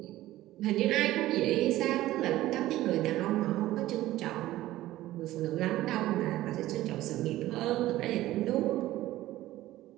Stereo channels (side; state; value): left; quieter; 15.6 dB